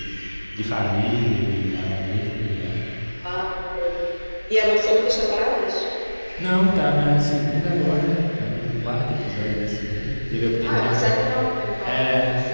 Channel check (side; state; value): both; inverted; correlation -1.00